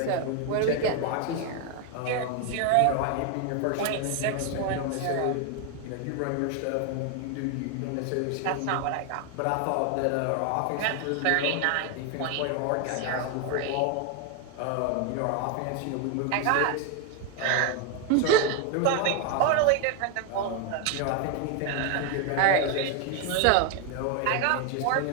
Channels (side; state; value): both; different; correlation 0.01